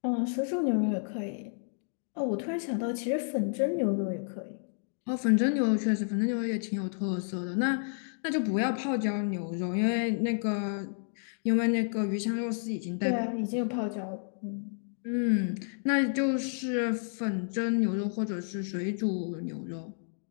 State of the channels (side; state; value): right; silent; digital silence